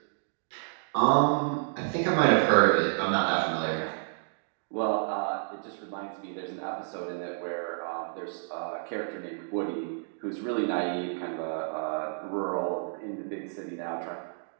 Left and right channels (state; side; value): silent; left; digital silence